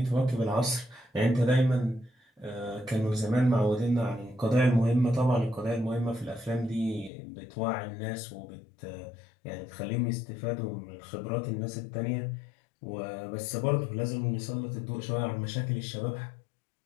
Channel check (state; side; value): drops out; right; at 7.1 s